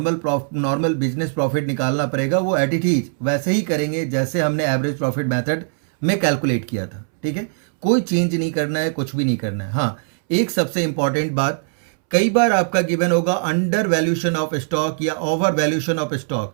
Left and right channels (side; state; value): left; silent; 65 dB below the other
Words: बिजनेस प्रॉफिट निकालना पड़ेगा, वो एट इट इज वैसे ही करेंगे जैसे हमने एवरेज प्रॉफिट मेथड में कैलकुलेट किया था। ठीक है, कोई चेंज नहीं करना है, कुछ भी नहीं करना है। हाँ, एक सबसे इंपॉर्टेंट बात, कई बार आपका गिवन होगा अंडर वैल्यूशन ऑफ स्टॉक या ओवर वैल्यूशन ऑफ